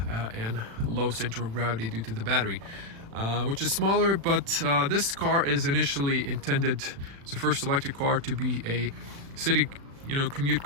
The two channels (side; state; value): left; late; 36 ms